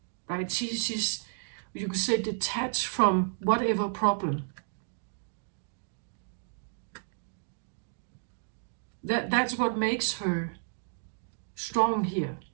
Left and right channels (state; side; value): silent; left; digital silence